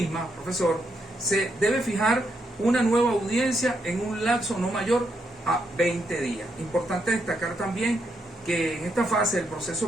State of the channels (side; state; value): both; normal; correlation 0.79